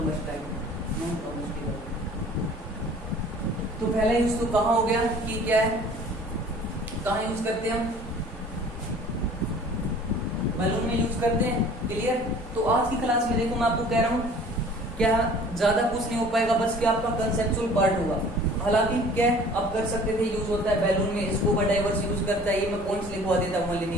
तो पहला यूज तो कहाँ हो गया कि क्या है, कहाँ यूज करते हैं हम, बैलून में यूज करते हैं। क्लियर, तो आज की क्लास में देखो मैं आपको कह रहा हूँ क्या ज्यादा कुछ नहीं हो पाएगा, बस क्या आपका कंसेप्चुअल पार्ट होगा। हालांकि क्या आप कर सकते थे, यूज होता है बैलून में, स्कूबा डाइवर्स यूज करता है, ये मैं पॉइंट्स लिखवा देता हूँ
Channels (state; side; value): normal; both; correlation 0.49